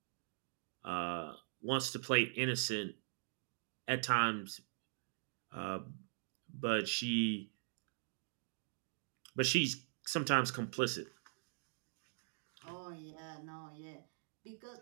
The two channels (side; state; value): left; silent; digital silence